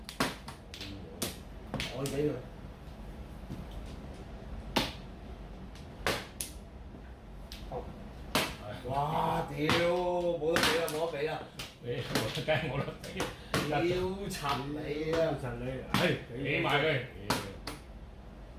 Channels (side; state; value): both; identical; correlation 1.00